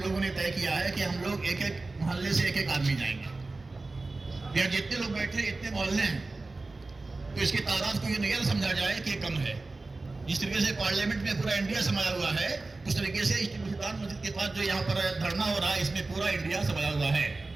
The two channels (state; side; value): quieter; left; 3.4 dB